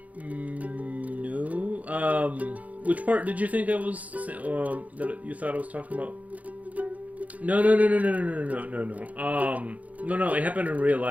Which part did you think I was that you thought I was talking about? No. No. It happened in real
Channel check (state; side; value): late; left; 0.072 ms